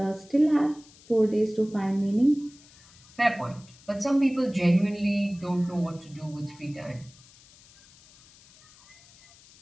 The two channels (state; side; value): noise; left; hiss, 25 dB below the sound